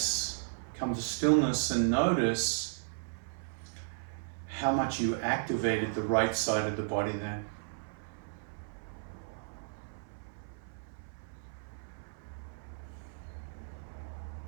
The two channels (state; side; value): silent; left; 55 dB below the other